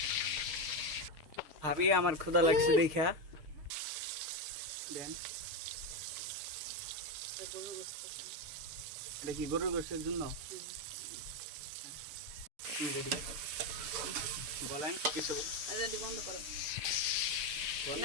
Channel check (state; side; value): late; left; 6.5 ms